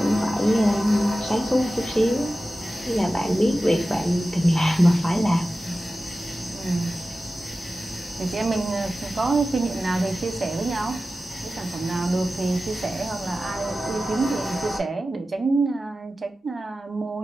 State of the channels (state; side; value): normal; both; correlation 0.94